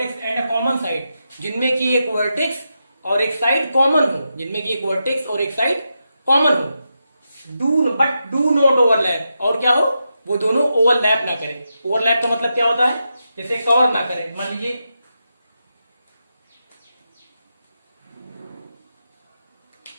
and a common side, जिनमें की एक वर्टेक्स और एक साइड कॉमन हो, जिनमें की एक वर्टेक्स और एक साइड कॉमन हो। बट डू नॉट ओवरलैप, और क्या हो, वो दोनों ओवरलैप ना करें। ओवरलैप का मतलब क्या होता है? जैसे कवर ना करें। मान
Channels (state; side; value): inverted; both; correlation -0.86